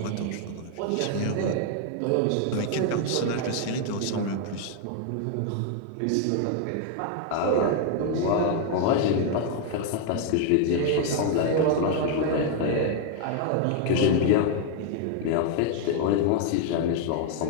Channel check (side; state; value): both; different; correlation 0.00